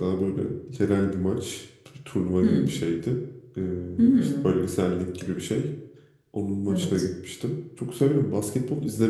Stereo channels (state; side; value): identical; both; correlation 1.00